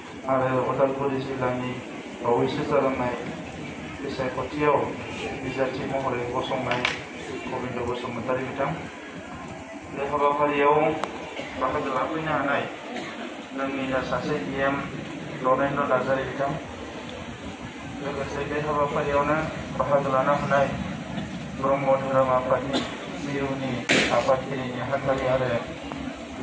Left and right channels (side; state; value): both; identical; correlation 1.00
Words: आरो उदालगुरि जिल्लानि बावैसो जालांनाय बिसायख'थियाव बिजाथि महरै गसंनाय गबिन्द बसुमतारी बिथां बे हाबाफारियाव बाहागो लाफैनो हानाय जोंनिनो सासे इएम रनेन्द्र नार्जारि बिथां लोगोसे बे हाबाफारियावनो बाहागो लानो हानाय ब्रह्म धोरोम आफादनि मिरुनि आफादगिरि नेहाथारि आरो